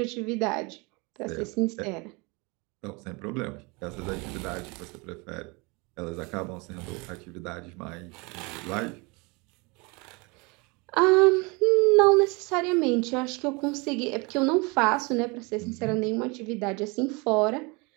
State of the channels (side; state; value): left; quieter; 28.0 dB